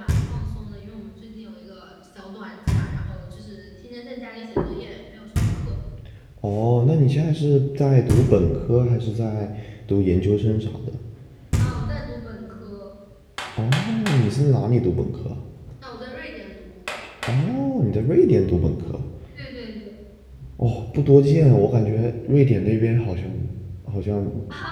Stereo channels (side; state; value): both; identical; correlation 1.00